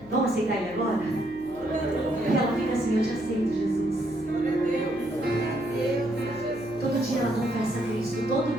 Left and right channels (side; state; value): left; noise; hum, 21 dB below the sound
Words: Vamos aceitar Ele agora? E ela fica assim, eu te aceito, Jesus. Todo dia ela confessa a Cristo. Todo